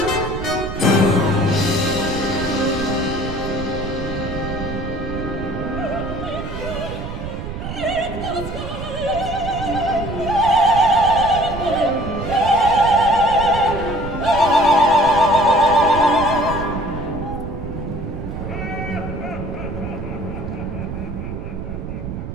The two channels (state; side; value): noise; right; rumble, 7 dB below the sound